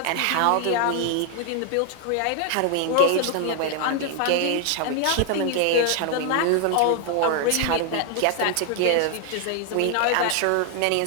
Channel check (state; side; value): different; both; correlation 0.00